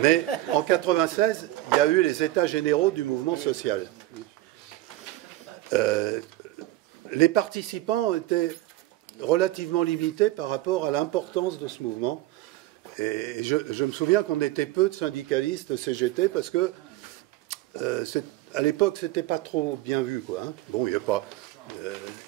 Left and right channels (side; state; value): left; quieter; 16.4 dB